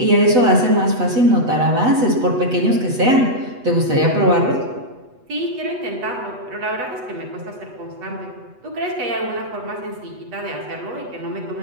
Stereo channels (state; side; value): late; left; 8.1 ms